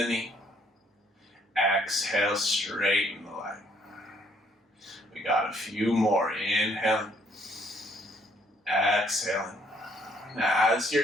knee. Exhale, straighten the leg. We got a few more. Inhaling. Exhaling. Now, as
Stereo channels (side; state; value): both; normal; correlation 0.66